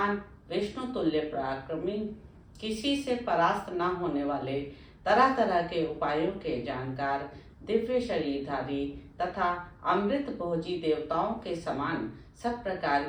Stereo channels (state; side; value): identical; both; correlation 1.00